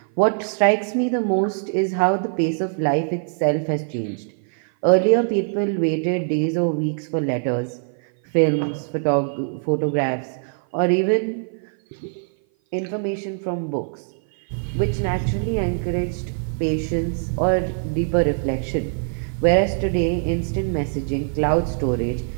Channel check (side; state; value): left; silent; 57 dB below the other